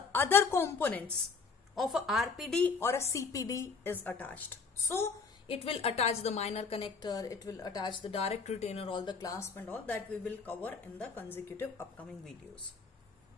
other components of a RPD or a CPD is attached. So it will attach the minor connector, it will attach the direct retainer, all the clasp and all that we will cover in the consecutive upcoming videos.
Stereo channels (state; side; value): quieter; right; 4.9 dB